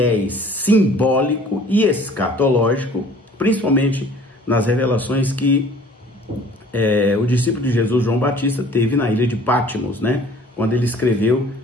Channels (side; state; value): both; normal; correlation 0.51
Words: simbólico e escatológico, principalmente nas revelações que o discípulo de Jesus, João Batista, teve na ilha de Patmos, né? Quando ele escreveu